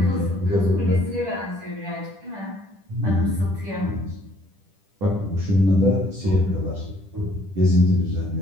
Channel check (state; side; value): late; left; 10 ms